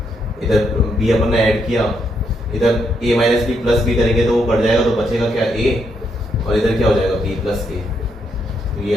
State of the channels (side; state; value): both; normal; correlation 0.77